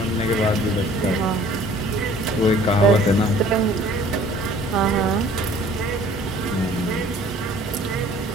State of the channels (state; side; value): normal; both; correlation 0.52